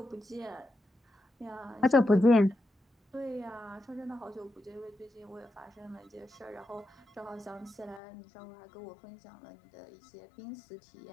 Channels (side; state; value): right; drops out; at 8.0 s